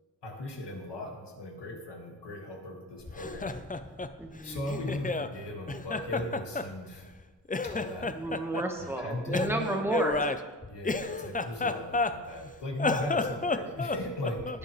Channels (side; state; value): both; normal; correlation 0.33